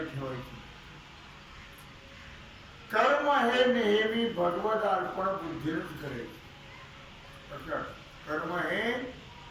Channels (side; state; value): both; identical; correlation 1.00